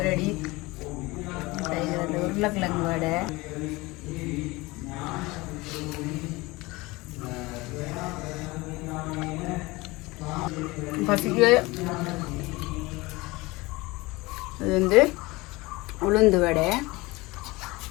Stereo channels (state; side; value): quieter; right; 22.3 dB